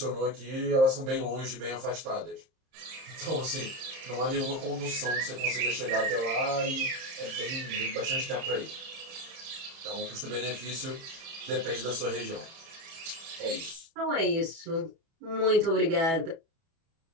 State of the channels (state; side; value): late; left; 30 ms